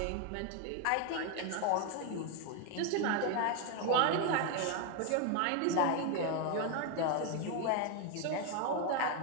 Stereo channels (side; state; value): both; different; correlation 0.01